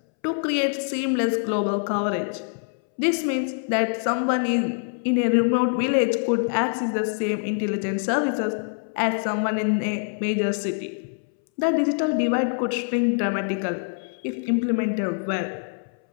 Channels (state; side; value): silent; right; 62 dB below the other